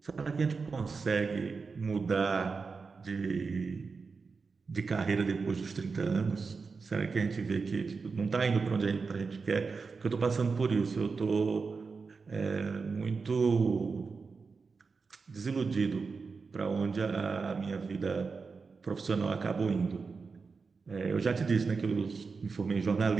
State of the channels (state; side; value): quieter; left; 4.7 dB